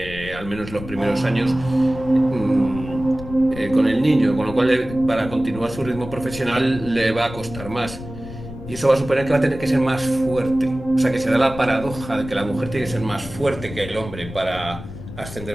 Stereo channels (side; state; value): left; noise; rumble, 12 dB below the sound